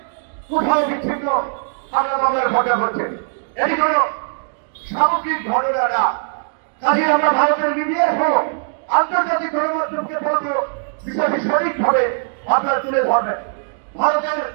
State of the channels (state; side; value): silent; left; digital silence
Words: কোথাও বিচ্ছিন্ন হামলা মামলার ঘটনা ঘটছে। এই জন্য সামগ্রিক ঘটনা না, কাজে আমরা ভারতের মিডিয়া সহ আন্তর্জাতিক গণমাধ্যমকে বলবো বিষয়টি সঠিকভাবে আপনারা তুলে ধরবেন। ভারতের